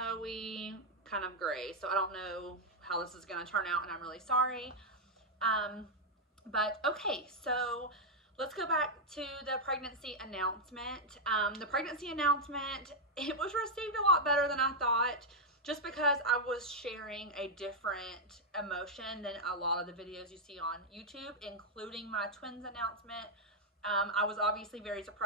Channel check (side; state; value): both; normal; correlation -0.02